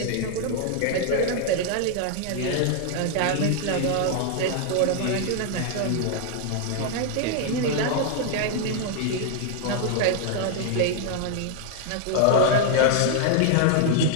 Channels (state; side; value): different; both; correlation 0.00